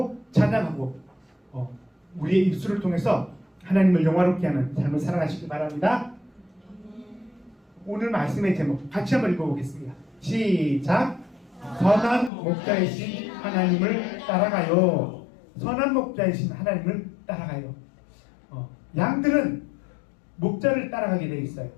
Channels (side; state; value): right; drops out; at 12.3 s